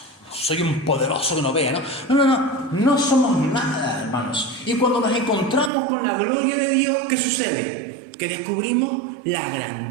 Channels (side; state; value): left; drops out; at 5.7 s